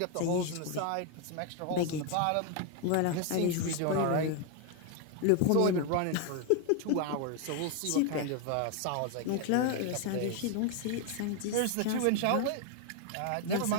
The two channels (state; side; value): different; both; correlation 0.01